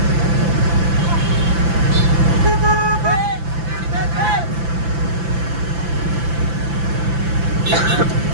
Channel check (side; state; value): left; late; 5.9 ms